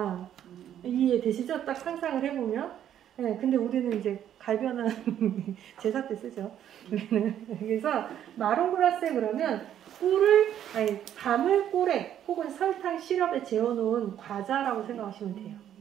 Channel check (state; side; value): quieter; left; 10.4 dB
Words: 이해되시죠? 딱 상상을 해보면. 예, 근데 우리는 이제 갈변은 제사 때 쓰죠. 그래서 마롱글라세 그러면 밤을 꿀에 혹은 설탕 시럽에 재워놓은 과자라고 생각하시면 돼요.